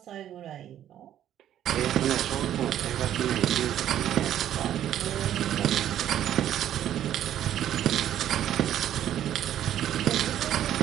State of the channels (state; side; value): quieter; left; 11.2 dB